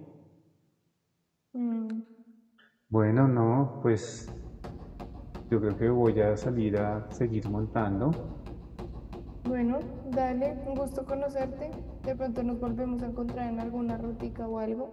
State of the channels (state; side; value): identical; both; correlation 1.00